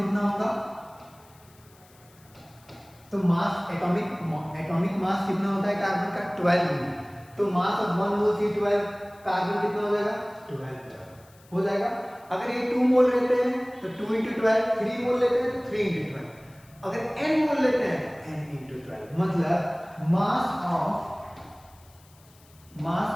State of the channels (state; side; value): noise; left; hiss, 28 dB below the sound